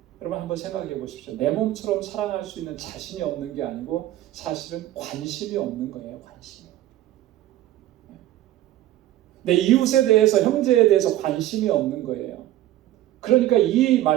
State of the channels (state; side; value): quieter; left; 14.1 dB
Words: 여러분 한번 생각해 보십시오. 내 몸처럼 사랑할 수 있는 자신이 없는 게 아니고 사실은 관심이 없는 거예요. 관심이. 내 이웃에 대해서, 형제에 대해서 관심이 없는 거예요. 그러니까 이